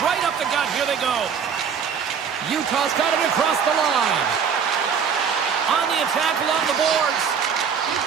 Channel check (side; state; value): left; quieter; 6.9 dB